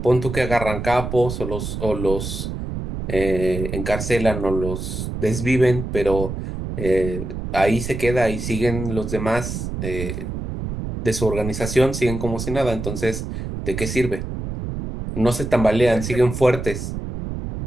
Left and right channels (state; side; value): noise; right; rumble, 6 dB below the sound